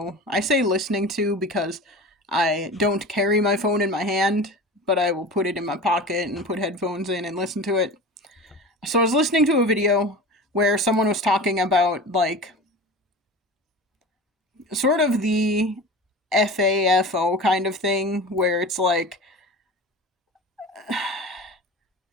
I say listening to because I don't carry my phone in my hand, but I will put it in my pocket and put headphones in and listen to it. So I was listening to a video where someone was talking about like sort of the FAFO kind of thing where it's like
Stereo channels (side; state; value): both; normal; correlation 0.34